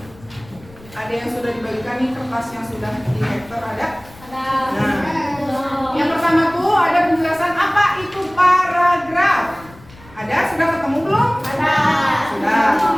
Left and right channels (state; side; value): noise; left; rumble, 23 dB below the sound